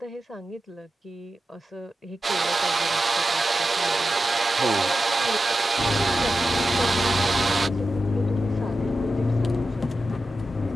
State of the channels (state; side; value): normal; both; correlation 0.91